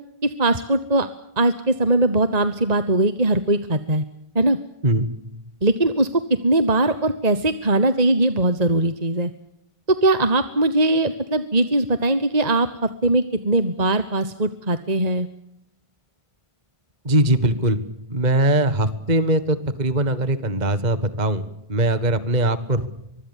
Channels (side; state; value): left; late; 1.9 ms